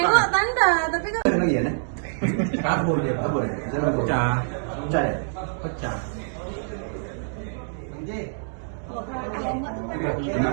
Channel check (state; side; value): silent; left; digital silence